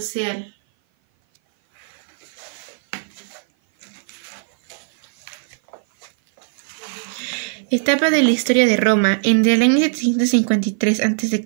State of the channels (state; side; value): silent; left; 56 dB below the other